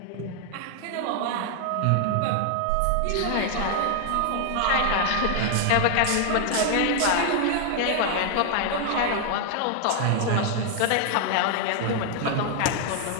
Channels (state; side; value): different; both; correlation 0.00